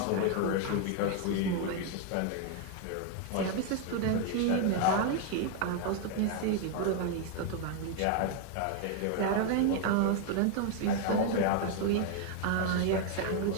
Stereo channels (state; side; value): different; both; correlation 0.01